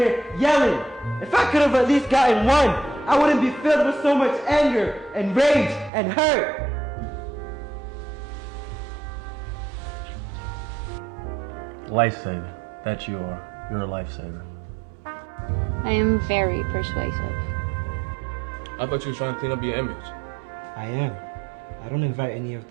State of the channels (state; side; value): drops out; left; at 5.9 s